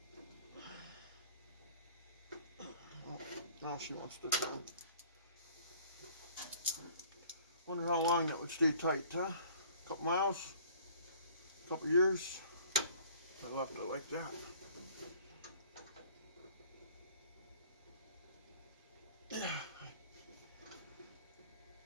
Oh, now she wants to come. Wonder how long that would stay tight, huh? A couple miles? A couple years? I left it like that.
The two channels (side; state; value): both; inverted; correlation -0.53